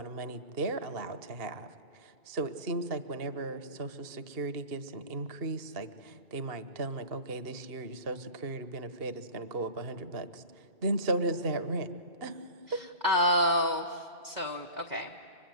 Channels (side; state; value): left; late; 2.3 ms